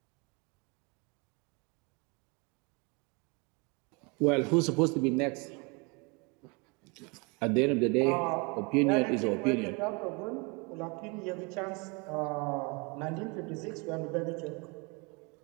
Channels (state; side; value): quieter; left; 30.0 dB